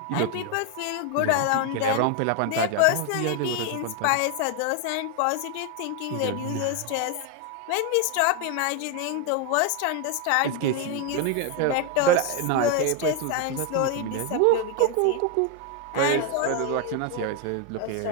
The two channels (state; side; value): different; both; correlation 0.01